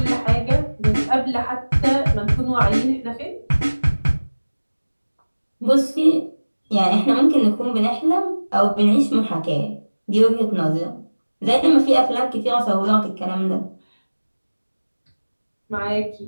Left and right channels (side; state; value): both; inverted; correlation -1.00